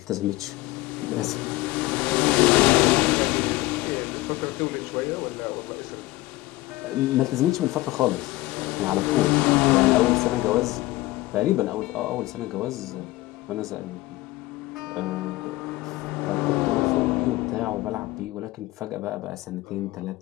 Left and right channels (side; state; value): right; quieter; 19.1 dB